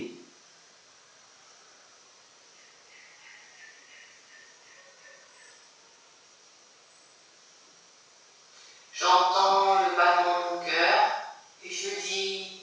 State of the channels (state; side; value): identical; both; correlation 1.00